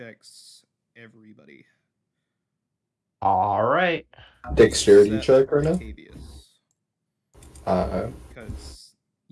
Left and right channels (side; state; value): both; identical; correlation 1.00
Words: everybody. All right. Dexterity check right now? Octavius. Because